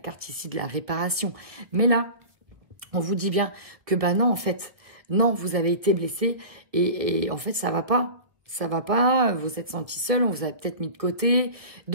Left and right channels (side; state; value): left; late; 1.6 ms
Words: ici de la réparation. Mais là, on vous dit bien que non, en fait, non, vous avez été blessé et en fait, ça va pas. Ça va pas, vous êtes senti seul, on vous a peut-être mis de côté.